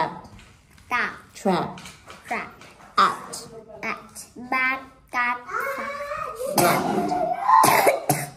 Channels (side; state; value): both; identical; correlation 1.00